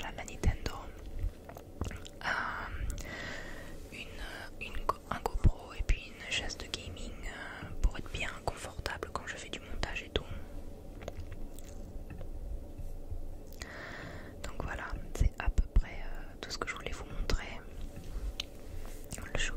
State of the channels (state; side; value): identical; both; correlation 1.00